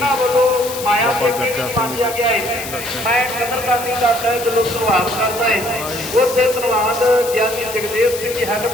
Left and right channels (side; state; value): left; noise; hiss, 10 dB below the sound